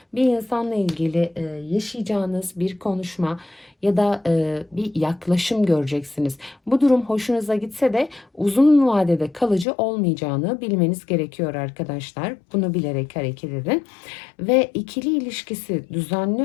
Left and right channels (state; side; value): drops out; right; at 9.7 s